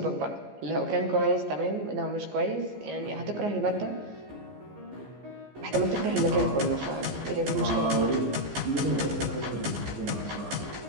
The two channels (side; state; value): left; late; 15 ms